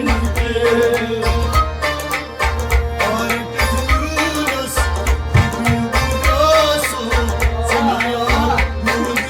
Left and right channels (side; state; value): both; identical; correlation 1.00